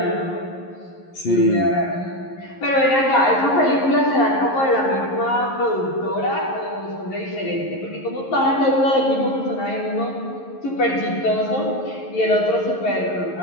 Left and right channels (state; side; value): late; right; 11 ms